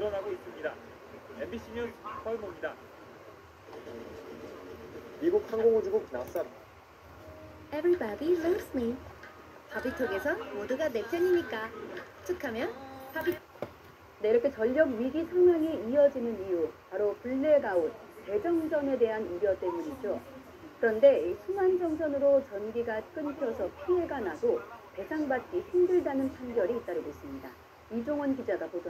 있습니다. MBC 뉴스 서울모입니다. 미국 항공우주국 나사 Everybody loves me. 바비톡에서 모두가 내 편이니까 툭하면 바비. 네, 이렇게 전력 위기 상황이 이어지는 이유 바로 블랙아웃, 대정전에 대한 우려 때문이죠. 그런데 이 순환 정전으로 전기가 끊겨서 피해가 나도 배상받기 힘들다는 판결이 잇따르고 있습니다. 이종원 기자가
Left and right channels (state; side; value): identical; both; correlation 1.00